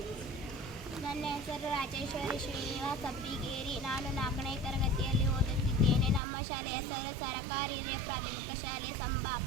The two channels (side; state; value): left; drops out; at 6.2 s